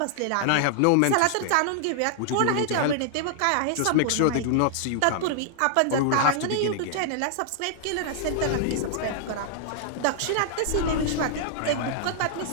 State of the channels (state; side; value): different; both; correlation -0.01